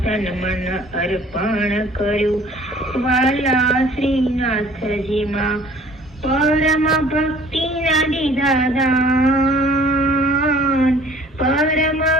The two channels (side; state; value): both; normal; correlation 0.53